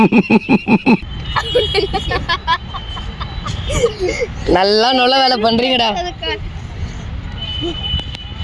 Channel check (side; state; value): both; identical; correlation 1.00